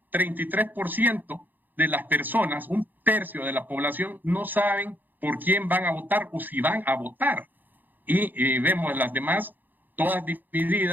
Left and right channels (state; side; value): late; left; 0.087 ms